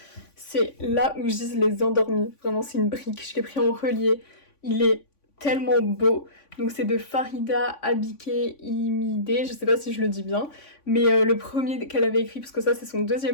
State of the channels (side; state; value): right; late; 3.5 ms